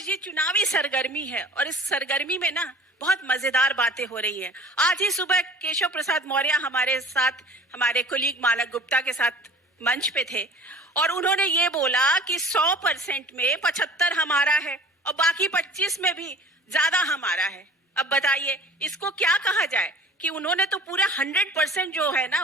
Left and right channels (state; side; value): normal; both; correlation 0.45